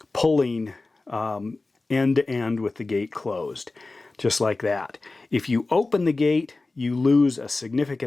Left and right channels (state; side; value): quieter; right; 3.3 dB